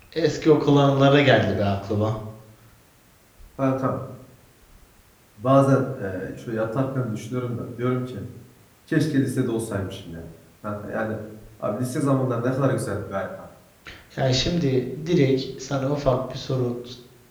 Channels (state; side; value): identical; both; correlation 1.00